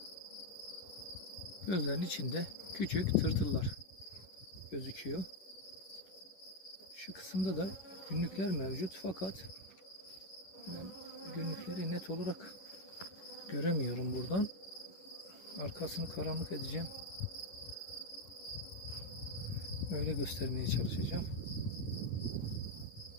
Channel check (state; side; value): late; right; 11 ms